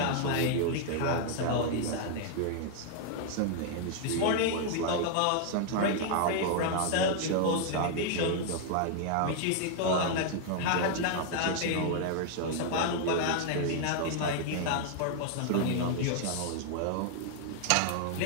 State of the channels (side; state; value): both; different; correlation 0.00